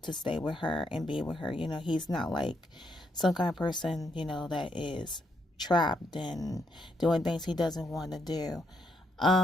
to stay with her and be with her. He's not like some kind of person, that is trapped and doing things he doesn't want to do.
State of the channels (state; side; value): normal; both; correlation 0.77